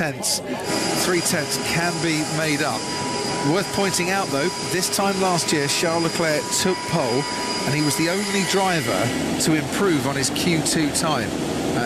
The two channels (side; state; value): both; identical; correlation 1.00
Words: 3 tenths, can be made up. Worth pointing out, though, this time last year, Charles Leclerc took pole, and he was the only driver to improve on his Q2 time